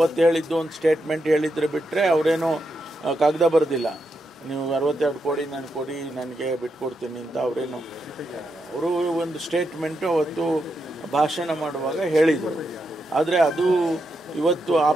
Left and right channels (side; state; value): both; normal; correlation 0.84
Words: ಹೇಳಿದ್ದು ಒಂದು ಸ್ಟೇಟ್ಮೆಂಟ್ ಹೇಳಿದ್ರೆ ಬಿಟ್ಟರೆ ಅವರೇನು ಕಾಗದ ಬರೆದಿಲ್ಲ. ನೀವು 62 ಕೋಟಿ ನನಗೆ ಕೊಡಿ, ನನಗೆ ಬಿಟ್ಕೊಡ್ತೀನಿ ಅಂತ ಅವರು ಒಂದು ಸ್ಟೇಟ್ಮೆಂಟು ಅವತ್ತು ಭಾಷಣ ಮಾಡುವಾಗ ಹೇಳಿದರು. ಆದರೆ ಅದು ಇವತ್ತು ಆ